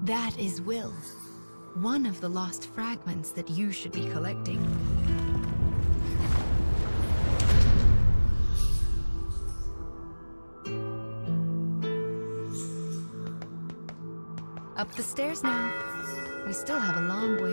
That is Will, one of the lost fragments that you should be collecting. Up the stairs now. We still have a long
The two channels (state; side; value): inverted; both; correlation -1.00